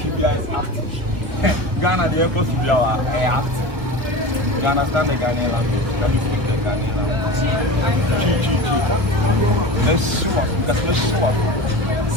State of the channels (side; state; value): left; late; 1.7 ms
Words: there is acting. Ghana, the airport should be our acting. You understand the Ghanaian language? Can you speak the Ghanaian language? Let's show us. Let's show us.